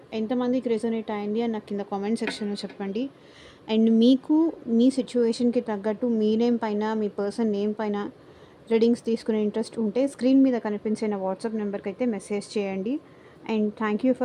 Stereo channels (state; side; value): identical; both; correlation 1.00